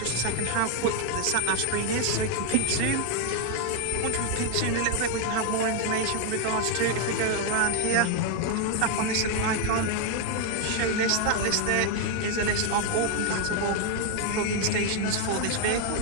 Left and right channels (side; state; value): both; different; correlation 0.00